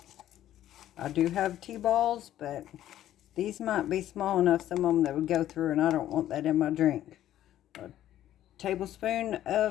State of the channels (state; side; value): quieter; right; 12.5 dB